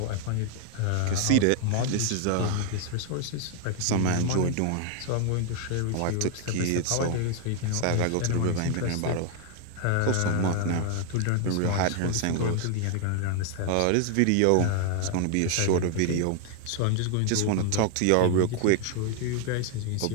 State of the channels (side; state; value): both; different; correlation 0.00